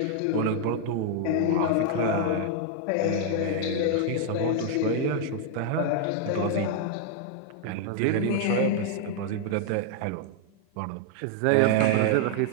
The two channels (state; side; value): different; both; correlation 0.00